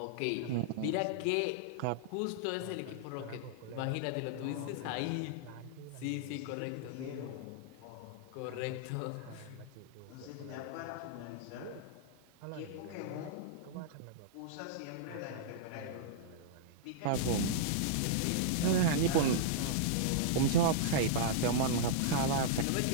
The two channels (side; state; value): both; different; correlation -0.02